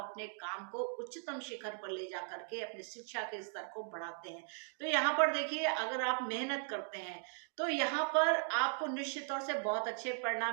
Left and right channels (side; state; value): left; silent; 52 dB below the other